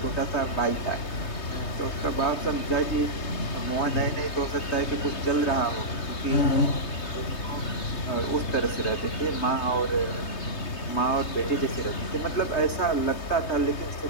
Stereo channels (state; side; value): late; right; 3.2 ms